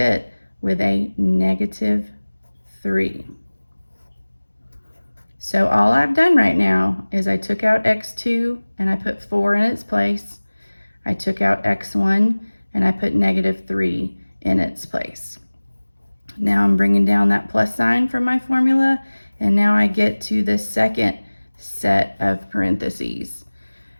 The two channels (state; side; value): inverted; both; correlation -1.00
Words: with a -3. So all I've done right now is I took out x2 and I put 4 in its place. I took out x1 and I put -3 in its place. Now I'm bringing down that plus sign from my formula, and now I get to the second set of parentheses.